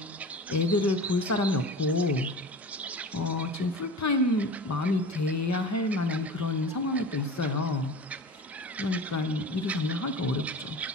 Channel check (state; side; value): normal; both; correlation 0.35